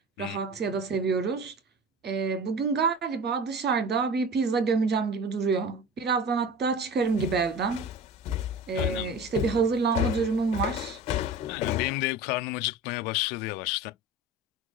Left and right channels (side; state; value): both; normal; correlation 0.35